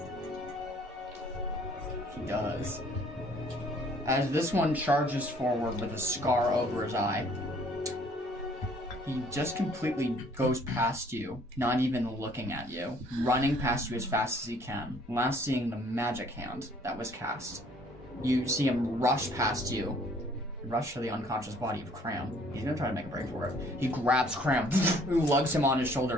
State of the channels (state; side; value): normal; both; correlation 0.59